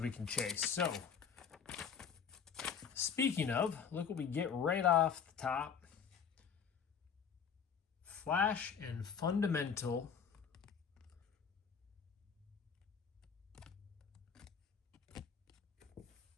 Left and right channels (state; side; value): quieter; right; 7.0 dB